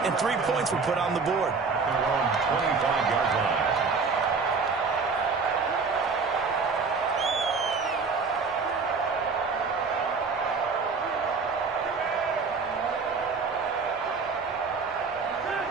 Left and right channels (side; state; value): left; quieter; 4.8 dB